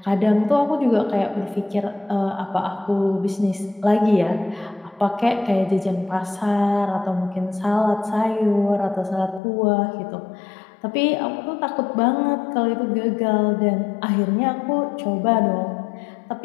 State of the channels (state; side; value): drops out; right; at 9.4 s